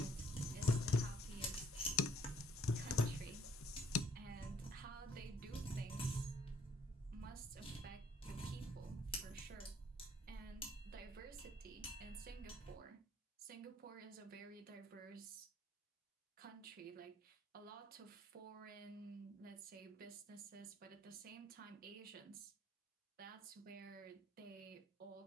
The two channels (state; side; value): normal; both; correlation 0.64